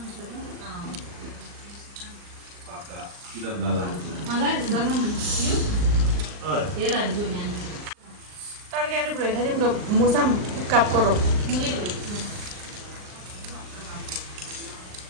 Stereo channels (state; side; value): late; left; 39 ms